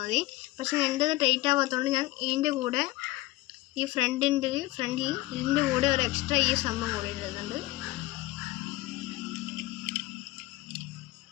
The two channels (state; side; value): quieter; right; 18.6 dB